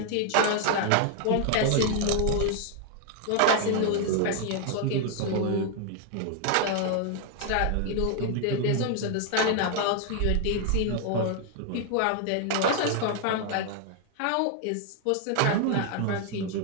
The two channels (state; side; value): different; both; correlation 0.00